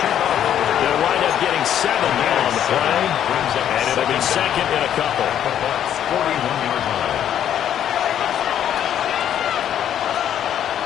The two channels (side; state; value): right; quieter; 10.1 dB